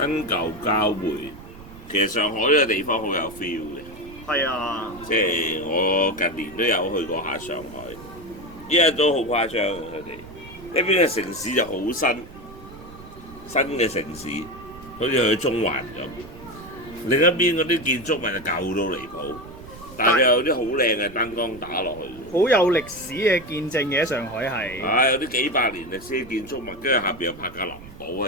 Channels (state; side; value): noise; right; rumble, 17 dB below the sound